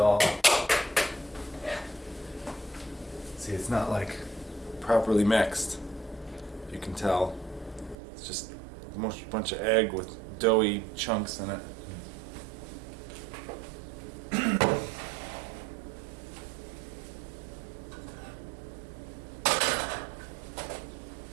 See, it's not like properly mixed. You can tell. It's just a bunch of egg with doughy chunks in it.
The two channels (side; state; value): left; drops out; at 8.0 s